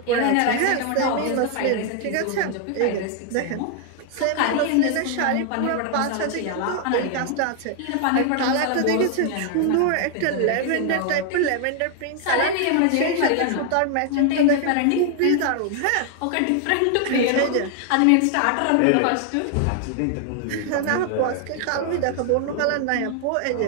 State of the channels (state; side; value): different; both; correlation 0.00